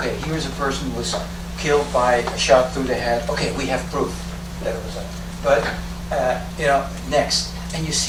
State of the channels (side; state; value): both; identical; correlation 1.00